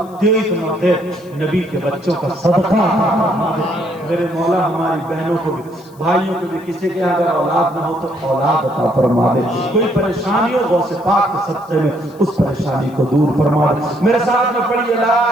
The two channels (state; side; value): noise; left; hiss, 28 dB below the sound